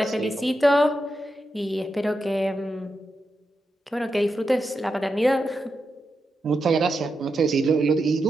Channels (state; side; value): normal; both; correlation 0.87